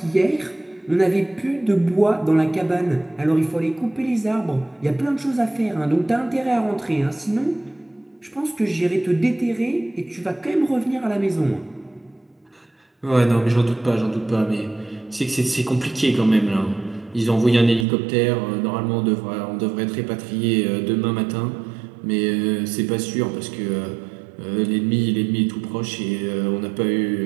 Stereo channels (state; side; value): drops out; left; at 17.9 s